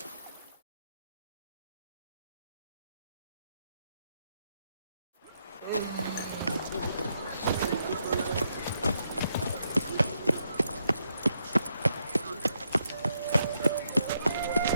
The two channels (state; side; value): inverted; both; correlation -0.79